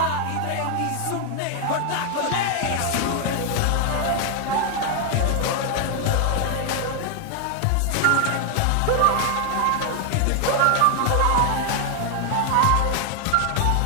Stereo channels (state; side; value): different; both; correlation 0.00